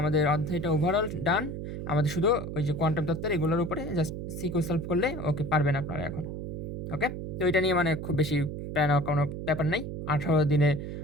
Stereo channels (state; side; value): noise; right; hum, 6 dB below the sound